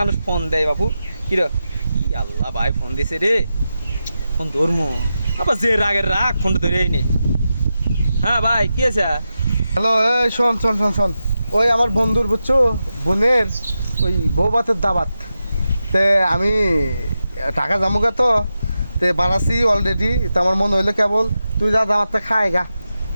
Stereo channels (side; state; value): both; inverted; correlation -0.90